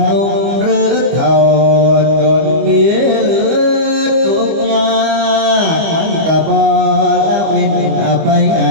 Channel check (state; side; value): late; left; 25 ms